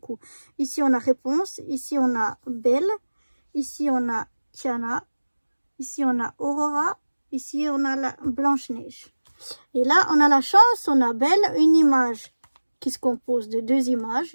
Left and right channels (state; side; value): inverted; both; correlation -1.00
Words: Ici, on a Réponse. Ici, on a Belle. Ici, on a Tiana. Ici, on a Aurora. Ici, on a la Blanche-Neige. Et là, on a la chance, on a Belle, une image qui se compose de 2 images,